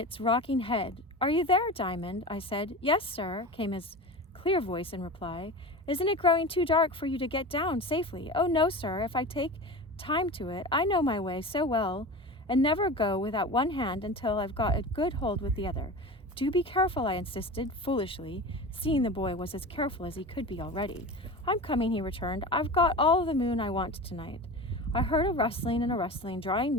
rocking head. Are you there, Diamond? I said. Yes, sir, came his clear voice in reply. Isn't it growing too dark for you to get down safely? Oh, no, sir, if I take time to it. I know my way so well, and never go without one hand until I've got a good hold with the other. Do be careful, I insisted, foolishly, seeing the boy was as careful as he could be already. I'm coming, he returned. I've got all the moon I want tonight. I heard a rustling and a rustling, drawing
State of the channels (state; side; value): normal; both; correlation 0.31